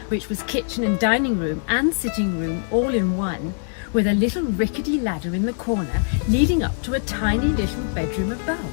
which was kitchen and dining room and sitting room all in one, with a little rickety ladder in the corner leading up to a tiny little bedroom above.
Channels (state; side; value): silent; right; digital silence